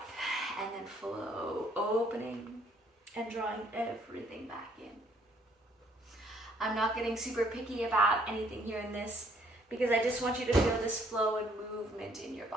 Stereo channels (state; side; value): normal; both; correlation 0.65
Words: and then flow, opening and drawing everything back in. I'm not getting super picky about anything here in this because I just want you to feel this flow and movement in your